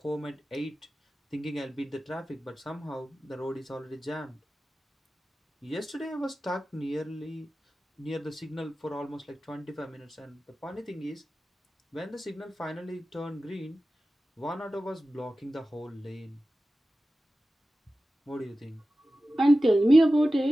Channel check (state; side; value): normal; both; correlation 0.95